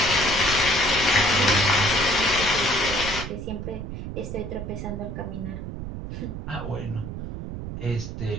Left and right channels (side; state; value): right; noise; rumble, 7 dB below the sound